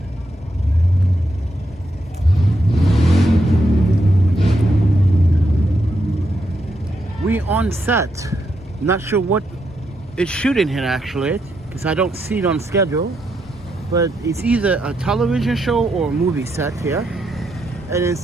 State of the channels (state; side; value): normal; both; correlation 0.81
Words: We on set. Not sure what it's shooting here actually, because I don't see it on schedule. But it's either a television show or a movie set here. And it